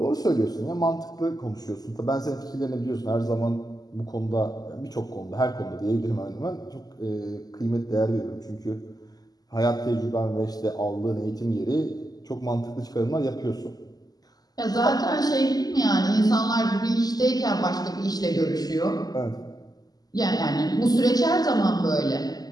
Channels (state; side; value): late; right; 0.18 ms